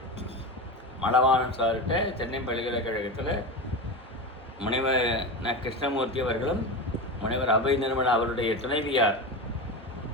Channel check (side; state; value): both; normal; correlation 0.22